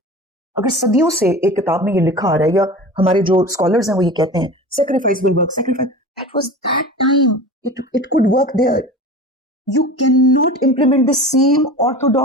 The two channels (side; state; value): both; normal; correlation 0.35